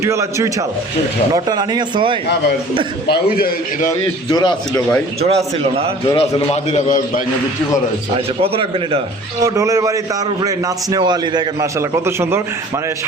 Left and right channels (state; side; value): normal; both; correlation 0.47